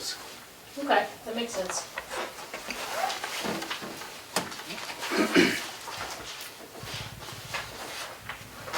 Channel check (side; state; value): both; identical; correlation 1.00